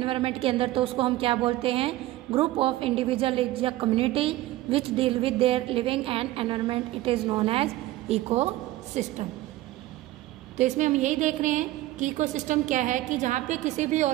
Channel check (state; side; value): quieter; left; 16.5 dB